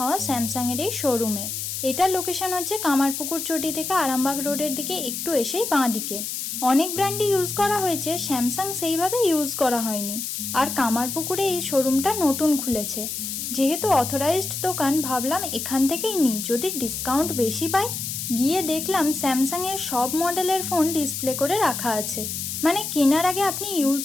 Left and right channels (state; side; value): noise; left; hiss, 4 dB below the sound